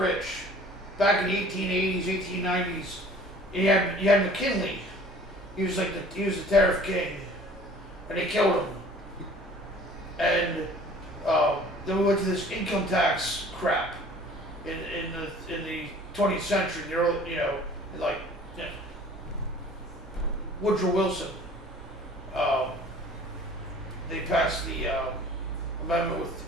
back in the 1880s, 1890s. You had McKinley. He was the tariff king, and they killed him. And then we went to this income tax crap in the 20th century, the early, Woodrow Wilson. They passed the amendment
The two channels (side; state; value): both; normal; correlation 0.49